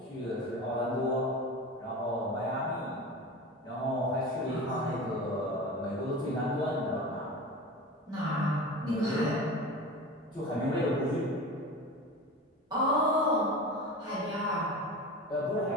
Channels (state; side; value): normal; both; correlation 0.32